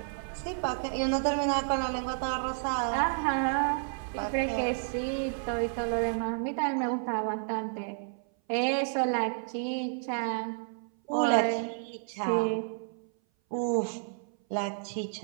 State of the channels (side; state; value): left; silent; 57 dB below the other